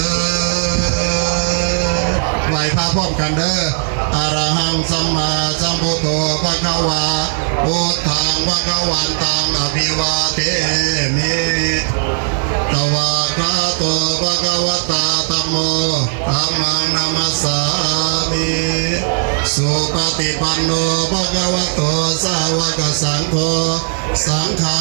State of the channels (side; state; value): left; silent; digital silence